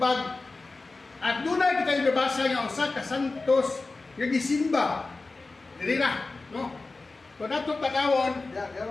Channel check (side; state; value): right; quieter; 3.6 dB